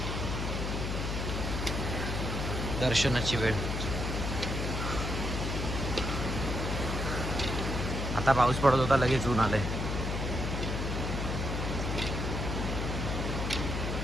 दर्शनाची वेळ. आता पाऊस पडत होता लगेच ऊन आलंय.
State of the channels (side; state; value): left; noise; hum, 2 dB below the sound